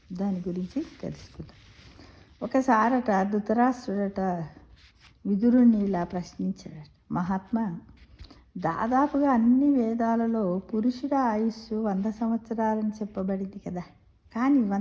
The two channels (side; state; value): both; identical; correlation 1.00